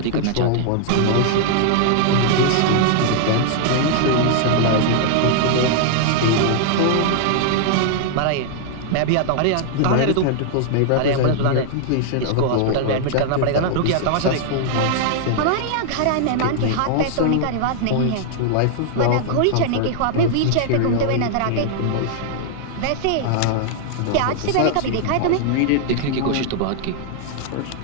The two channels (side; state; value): both; different; correlation -0.01